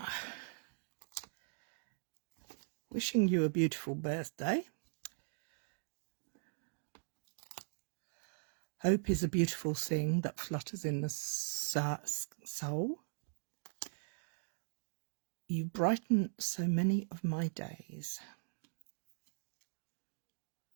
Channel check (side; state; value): left; silent; digital silence